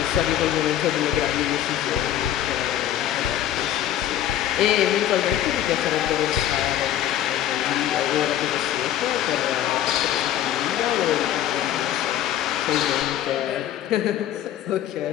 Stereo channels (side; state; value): right; quieter; 11.6 dB